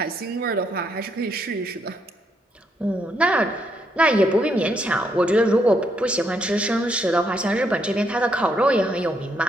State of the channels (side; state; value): both; normal; correlation 0.75